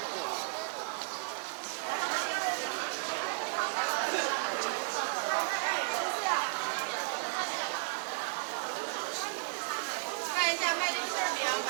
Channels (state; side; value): silent; left; digital silence